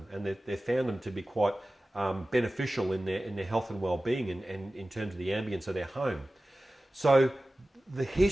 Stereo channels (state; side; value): normal; both; correlation 0.96